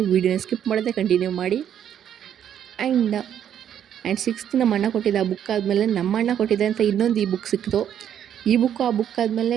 ವೀಡಿಯೋನ ಸ್ಕಿಪ್ ಮಾಡದೆ ಕಂಟಿನ್ಯೂ ಮಾಡಿ. ಆ್ಯಂಡ್ ಸಿಕ್ಸ್ತ್ ನಮ್ಮ ಅಣ್ಣ ಕೊಟ್ಟಿದ್ದ ಆ ಬುಕ್ ಆದಮೇಲೆ ನಮ್ಮ ಅಣ್ಣ ಕೊಟ್ಟಿದ್ದೆ ಅಂತ ಇನ್ನೊಂದು ಈ ಬುಕ್ ಸಿಕ್ತು. ಈ ಬುಕ್ಕು ಆ ಬುಕ್ ಆದಮೇಲೆ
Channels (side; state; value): left; quieter; 9.6 dB